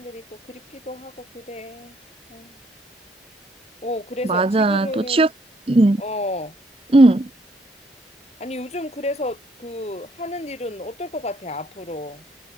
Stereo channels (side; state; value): both; normal; correlation 0.68